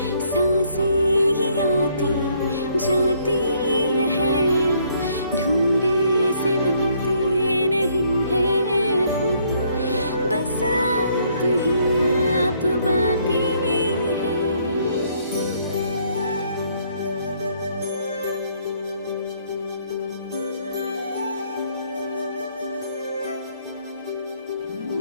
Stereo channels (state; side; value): inverted; both; correlation -0.68